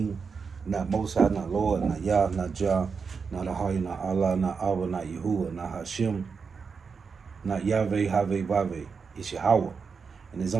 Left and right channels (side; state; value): left; quieter; 5.5 dB